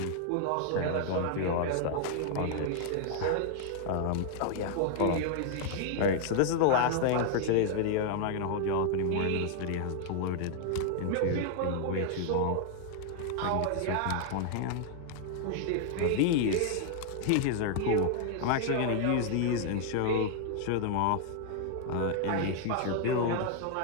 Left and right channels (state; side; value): different; both; correlation 0.00